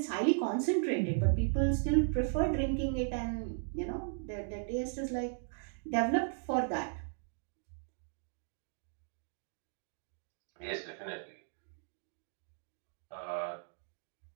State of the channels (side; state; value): left; silent; digital silence